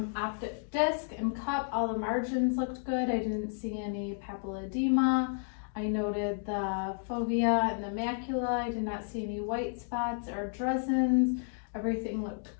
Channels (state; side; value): silent; right; digital silence